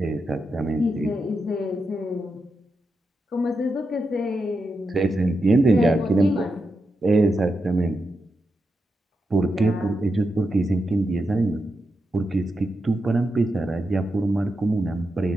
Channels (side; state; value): both; normal; correlation 0.87